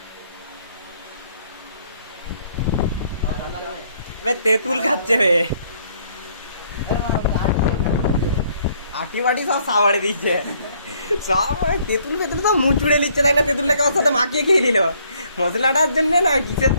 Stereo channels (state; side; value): inverted; both; correlation -0.65